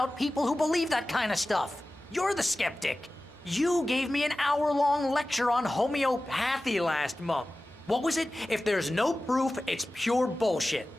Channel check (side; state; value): both; normal; correlation 0.96